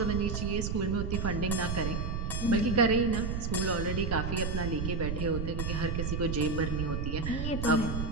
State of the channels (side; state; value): right; noise; rumble, 2 dB below the sound